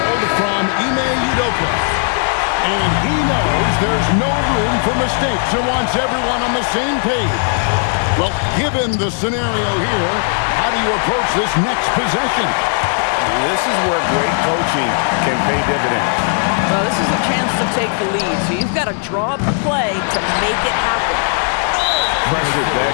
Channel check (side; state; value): right; silent; 55 dB below the other